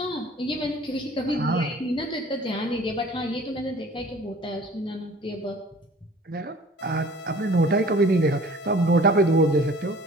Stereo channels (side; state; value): both; normal; correlation 0.48